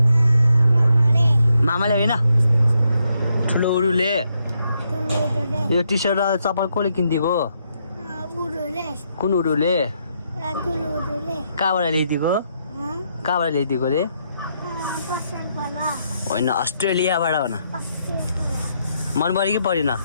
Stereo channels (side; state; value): both; inverted; correlation -0.78